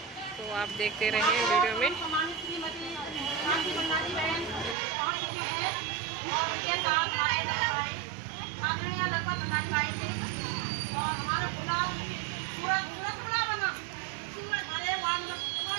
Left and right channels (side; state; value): left; drops out; at 4.8 s